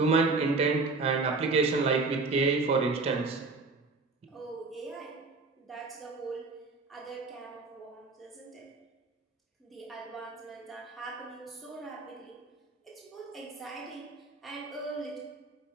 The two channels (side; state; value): left; quieter; 3.8 dB